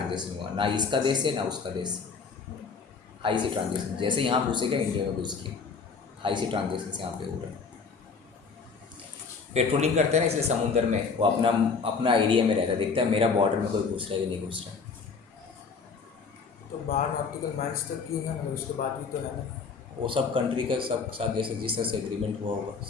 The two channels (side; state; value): right; quieter; 5.2 dB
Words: हुआ, ना इसका देश है ना उसका देश, हाई सी ट्रांजेक्शन, जैसे यहाँ घुसेगा इंडिया में घुस के हाई सी ट्रांजेक्शन से यहाँ पे हो रहा है। पेट्रोलिंग करते हैं ना, इसलिए समुद्र में वो अपना एरिया में रहता है, देखता है मेरा बॉर्डर में कोई घुस रहा है कि नहीं घुस रहा है। तो 12 नॉटिकल माइल्स तक क्यों है, मतलब उसके बाद भी तो है ना, वो सब कंट्री का सब साथ जैसे जिस तरह से एग्रीमेंट हुआ होगा